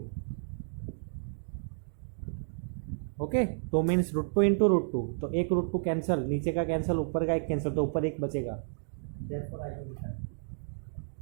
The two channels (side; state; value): left; silent; digital silence